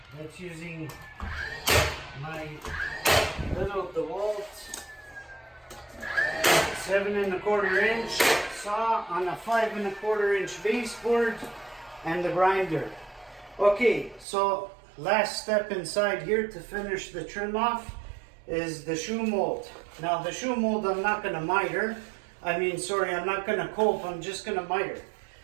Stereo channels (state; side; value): drops out; left; at 14.2 s